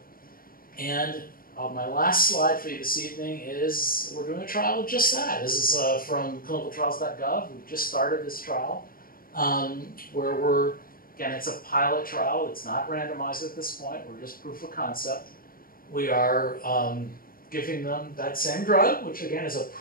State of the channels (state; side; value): late; right; 0.42 ms